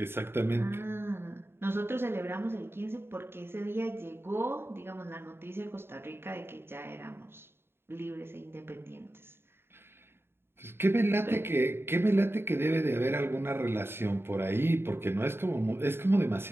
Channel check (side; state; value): left; late; 0.11 ms